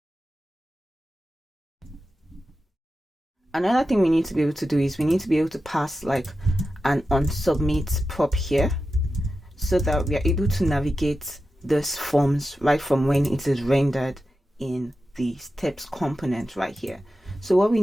Another thing we need to be able to do is we need to be able to pass like an onSubmit prop here, so that we are able to navigate these forms right from when it is rendered in the steps component right here. So what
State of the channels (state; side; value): normal; both; correlation 0.91